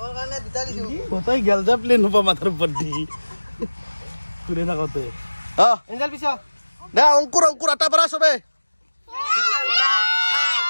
কাৰণে দুটা দিছো কোথায় গেল যা প্লেন হবা মাথাৰ উপৰ দি ঘুৰে থাকতে এঞ্জেল পিছা দে অংকুৰ আটা পাৰা সবে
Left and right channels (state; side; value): inverted; both; correlation -1.00